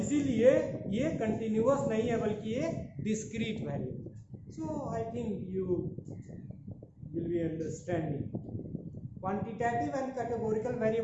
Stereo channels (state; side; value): identical; both; correlation 1.00